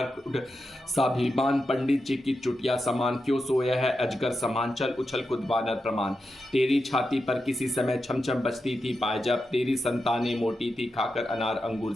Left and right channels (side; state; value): both; normal; correlation 0.89